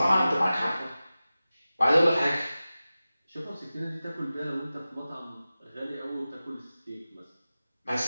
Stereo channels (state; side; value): inverted; both; correlation -0.96